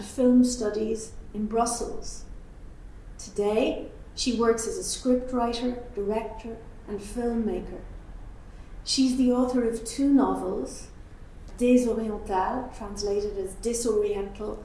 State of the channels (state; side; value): identical; both; correlation 1.00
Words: film studies in Brussels. Today, she works as a scriptwriter, director, and filmmaker. She's the author of two novels, Désorientale, translated as Disoriental,